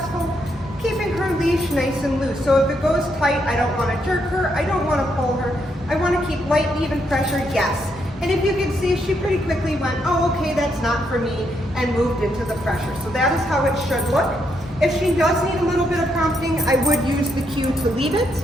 keeping her leash nice and loose. So if it goes tight, I don't want to jerk her, I don't want to pull her, I want to keep light, even pressure, yes. And if you can see, she pretty quickly went, oh, okay, that's not for me, and moved into the pressure. So that is how it should look. If she does need a little bit of prompting, I would use the cue to leave it,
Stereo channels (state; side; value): normal; both; correlation 0.77